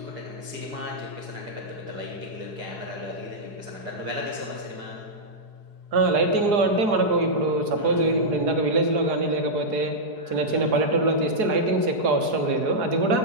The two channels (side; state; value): left; late; 4.8 ms